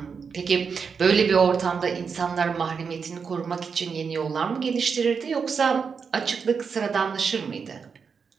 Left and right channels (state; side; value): quieter; left; 5.8 dB